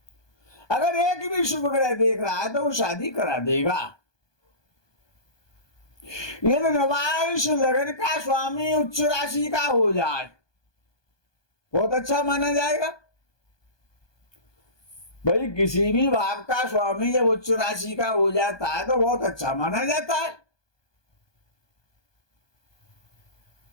अगर एक भी शुभ ग्रह देख रहा है तो वो शादी करा देगा। यदि नवांश लग्न का स्वामी उच्च राशि का हो जाए, बहुत अच्छा माना जाएगा। भाई किसी भी भाव का स्वामी जब उच्च राशि का हो जाता है तो बहुत अच्छा माना जाता है।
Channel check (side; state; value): right; late; 1.2 ms